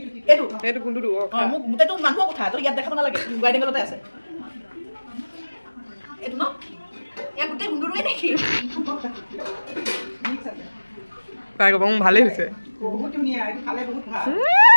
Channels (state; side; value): inverted; both; correlation -1.00